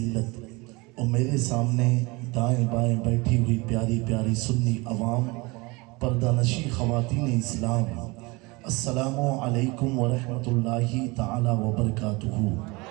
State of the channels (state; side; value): quieter; left; 25.1 dB